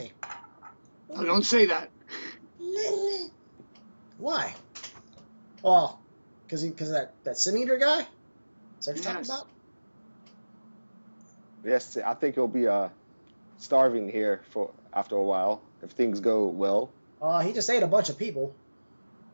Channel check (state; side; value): inverted; both; correlation -1.00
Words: Oh, don't say that. Why? Well, because of that sin eater guy. Is that what you're talking about? Yes, I think he'll be starving here for after a while if things go well. He just ate a bunch of people.